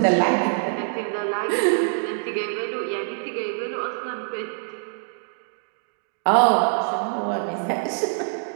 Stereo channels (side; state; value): left; silent; digital silence